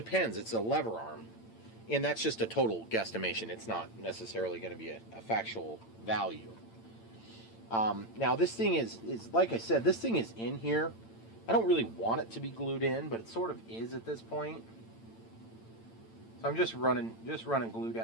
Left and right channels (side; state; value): right; late; 8.9 ms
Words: It's a lever arm. And that's just a total guesstimation. It's not necessarily going to be a factual value. Now, this thing is, like I said, this thing is in here. I don't really want it to be glued in, but it sort of is at this point. So I'm just running glue